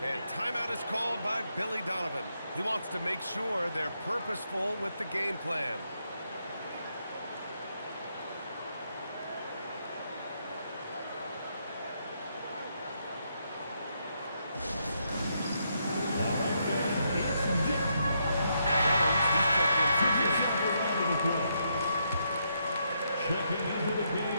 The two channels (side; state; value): both; inverted; correlation -0.78